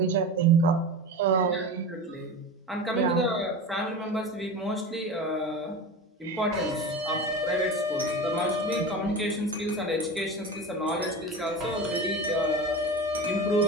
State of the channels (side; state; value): both; normal; correlation 0.29